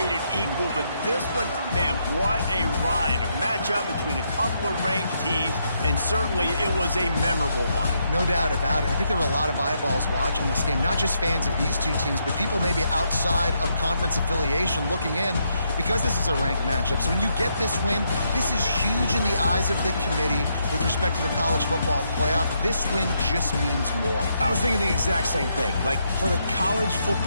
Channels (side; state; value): both; inverted; correlation -0.77